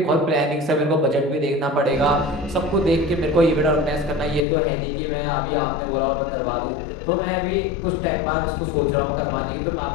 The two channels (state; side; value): drops out; right; at 4.5 s